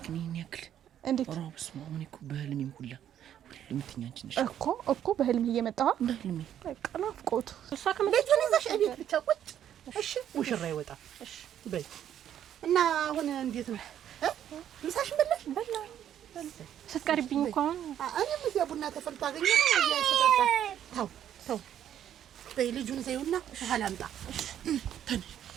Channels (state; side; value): quieter; left; 10.3 dB